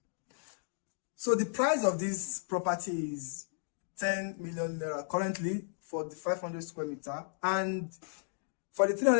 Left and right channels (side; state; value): right; silent; digital silence